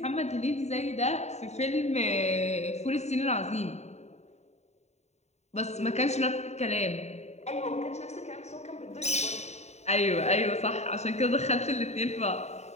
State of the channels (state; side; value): late; right; 0.32 ms